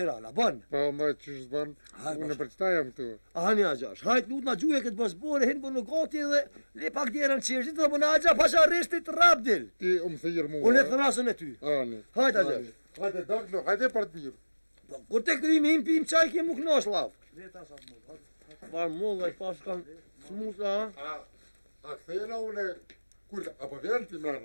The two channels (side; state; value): both; inverted; correlation -1.00